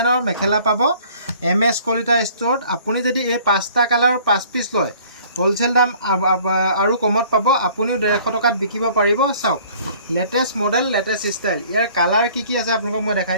মেখেলা পাব MS কলিতা ষ্ট'ৰত আপুনি যদি এই 5টা কালাৰৰ 5 পিচ লয় হোলচেল দাম আৰু কমত পাব আপুনিও 150 টকাত বিকিব পাৰিব চাওক লেটেষ্ট মডেল লেটেষ্ট ষ্টাইল ইয়াৰ কালাৰ কি আছে আপোনালোকক মই দেখাই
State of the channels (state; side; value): inverted; both; correlation -0.54